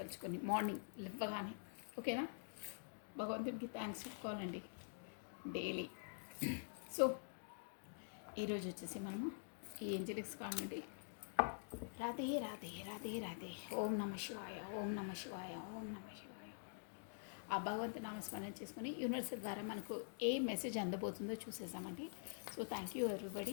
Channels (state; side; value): silent; right; digital silence